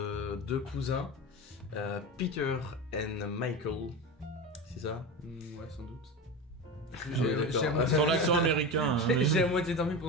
2 cousins, Peter et Michael. C'est ça? Ouais, sans doute. d'accord. Sur l'accent américain. hein. J'ai à moitié dormi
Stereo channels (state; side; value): normal; both; correlation 0.23